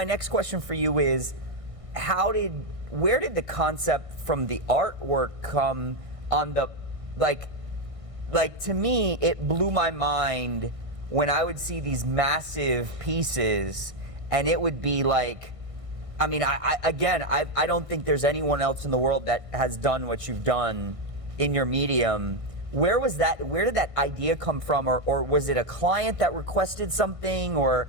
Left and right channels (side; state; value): left; late; 1.6 ms